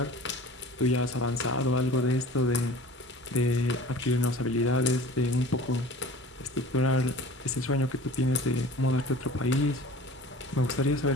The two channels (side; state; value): both; normal; correlation 0.42